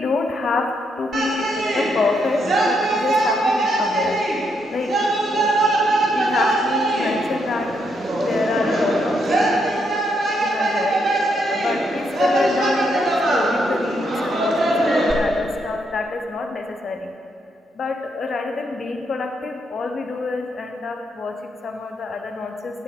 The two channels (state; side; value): normal; both; correlation 0.77